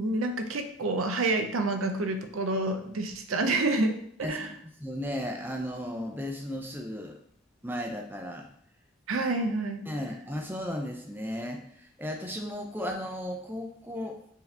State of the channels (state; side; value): normal; both; correlation 0.37